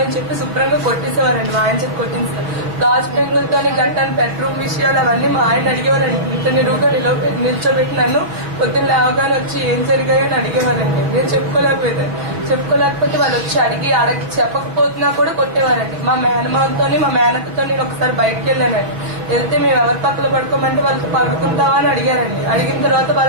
చెప్పి శుభ్రంగా కొట్టేసేవారండి. మా ఆయన చెప్పి కొట్టించారు. గాజు పెంకులతోని గట్టాను బెడ్రూమ్ విషయాలు అవన్నీ మా ఆయన అడిగేవారండి. ఇంత నిలువుగా నిల్చోబెట్టి నన్ను పొద్దున్న లేవగానే వచ్చి ఏం జరిగాయని అడిగేవారండి. నేను చెప్పుకోలేకపోతే వాళ్ళు వచ్చి అడిగి చెప్పకపోతున్నా కూడా కొట్టేవారండి. మా మేనకతో నేను ఒకసారి బయటకు వెళ్ళానండి. వెళ్తే మేము ఎవరి పక్కన పడుకోమంటే వాళ్ళతో పడుకుంటావా అని అడిగారండి. అడిగిన తర్వాత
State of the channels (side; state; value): left; late; 5.9 ms